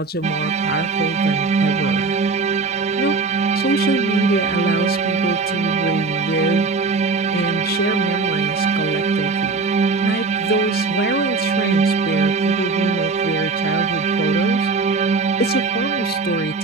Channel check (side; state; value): left; quieter; 4.0 dB